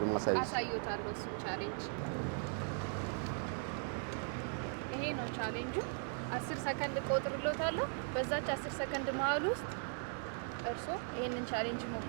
ነው ማሳየት? አሳይዎታለሁ እሱን ቻሌንጅ። ይሄ ነው ቻሌንጁ። 10 ሰከንድ ቆጥርሎታለሁ። በዛች 10 ሰከንድ መሀል ውስጥ እርሶ ይሄንን ቻሌንጅ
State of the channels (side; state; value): left; silent; 52 dB below the other